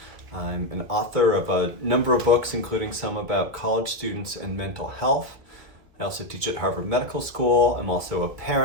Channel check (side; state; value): left; late; 2.4 ms